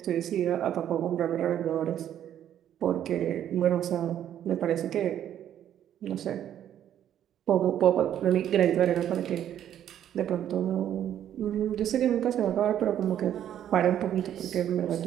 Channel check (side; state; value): left; quieter; 10.6 dB